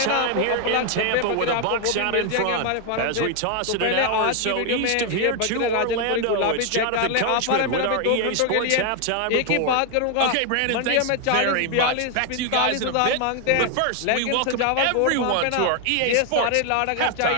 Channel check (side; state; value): both; different; correlation 0.00